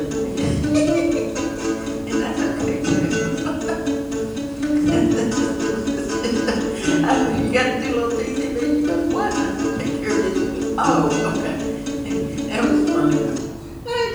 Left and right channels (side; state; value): both; identical; correlation 1.00